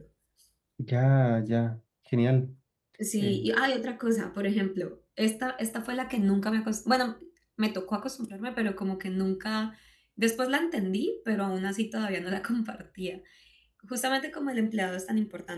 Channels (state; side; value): identical; both; correlation 1.00